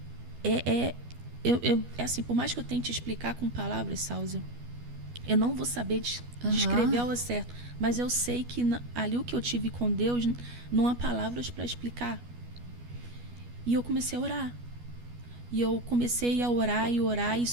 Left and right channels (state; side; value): late; left; 12 ms